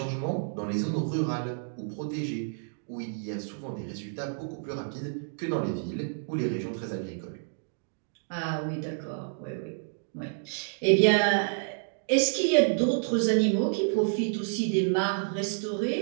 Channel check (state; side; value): silent; left; digital silence